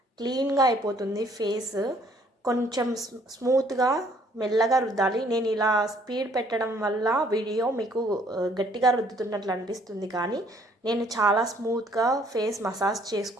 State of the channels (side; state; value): both; normal; correlation 0.62